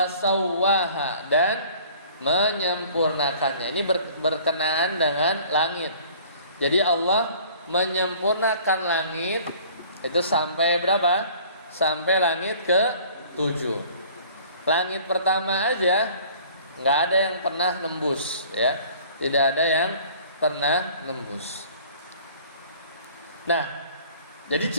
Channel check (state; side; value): inverted; both; correlation -0.50